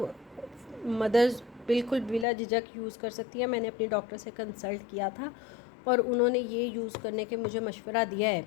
मदर्स बिल्कुल बिला झिझक यूज़ कर सकती है। मैंने अपनी डॉक्टर से कंसल्ट किया था और उन्होंने ये यूज़ करने के मुझे मशवरा दिया है,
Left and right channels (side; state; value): right; drops out; at 2.2 s